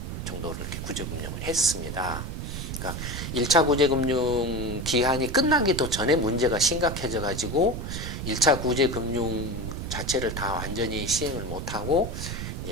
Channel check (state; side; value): noise; right; rumble, 6 dB below the sound